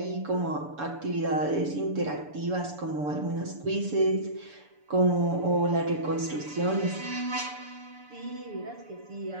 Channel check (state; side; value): late; left; 6.9 ms